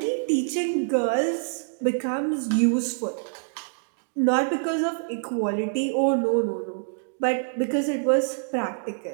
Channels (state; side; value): silent; left; digital silence